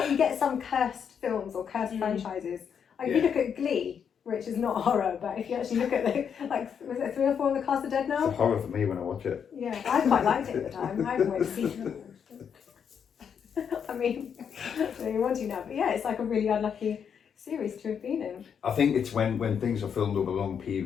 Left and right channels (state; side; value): quieter; right; 7.4 dB